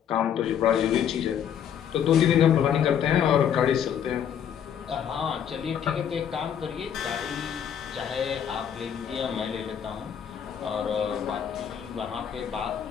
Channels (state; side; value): quieter; right; 8.8 dB